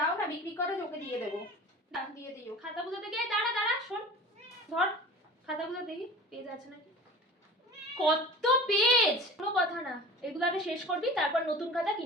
না, বিক্রি করে ওকে দিয়ে দেবো। না দিয়ে দিও। খাতাগুলো দেখে দাঁড়া শোন, ধর খাতাগুলো দেখি পেজ আছে নাকি। কত পেজ! কোনো কথা না, এগুলো আগে শেষ করবি, তারপর নতুন খাতা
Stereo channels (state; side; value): normal; both; correlation 0.38